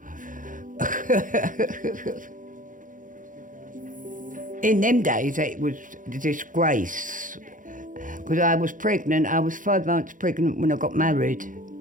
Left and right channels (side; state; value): left; late; 0.38 ms